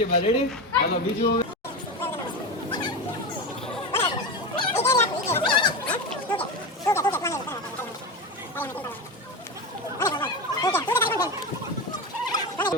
બા રેડી હાલો બીજું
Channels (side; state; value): both; normal; correlation 0.21